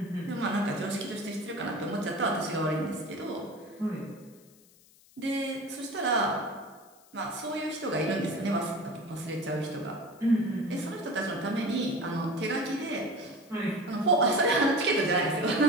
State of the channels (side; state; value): left; noise; hiss, 27 dB below the sound